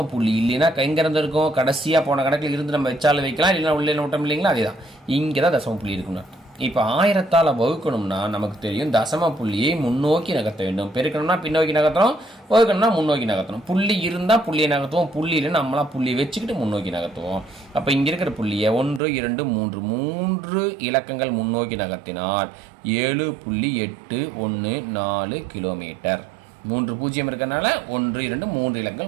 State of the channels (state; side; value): drops out; left; at 19.0 s